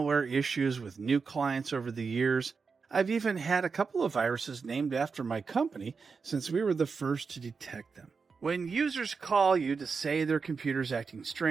issues with new clients over the years. I've even had a couple of viruses named after my company since we were the first to detect them. When users call you to say their computer's acting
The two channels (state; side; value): quieter; left; 5.1 dB